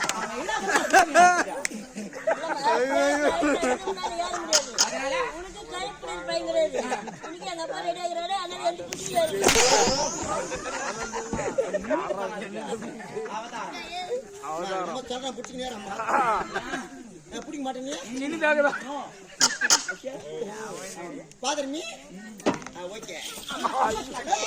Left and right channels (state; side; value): identical; both; correlation 1.00